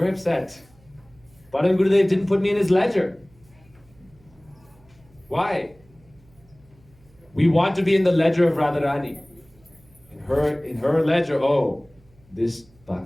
upset. Param Gurudev didn't put me in his ledger. Why? We want to be in the ledger of Radharani. In her ledger, oh, this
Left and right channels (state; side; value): noise; right; hum, 29 dB below the sound